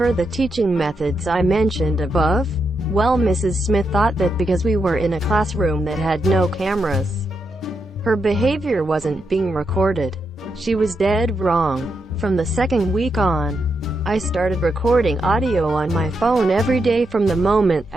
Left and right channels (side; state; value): both; normal; correlation 0.83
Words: the teaching methods I mentioned above? Well, Mrs. Smith thought that because we were in a classroom that had no cameras, her behavior wasn't being recorded. She was dead wrong. From the second week on, I started recording audio on my phone every day from the moment